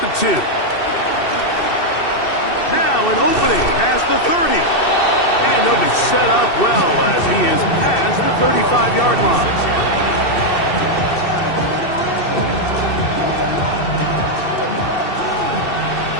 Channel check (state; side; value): late; right; 2.6 ms